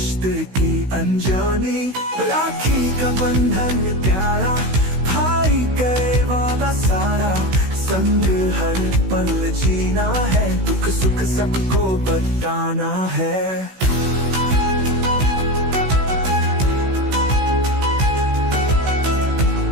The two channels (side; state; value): left; late; 16 ms